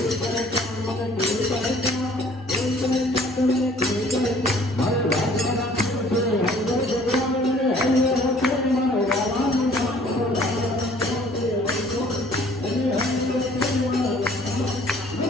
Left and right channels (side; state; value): both; normal; correlation 0.55